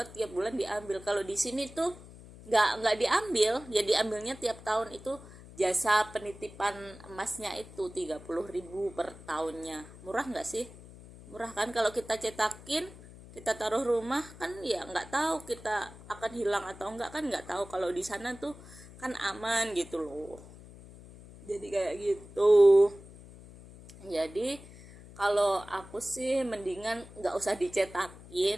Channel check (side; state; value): left; noise; hum, 18 dB below the sound